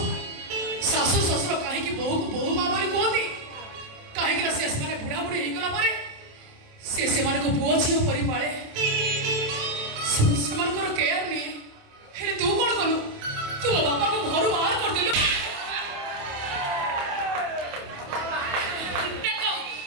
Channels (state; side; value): late; left; 27 ms